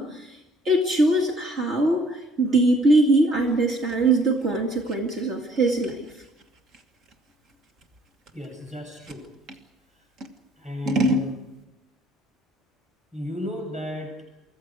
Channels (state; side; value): normal; both; correlation 0.60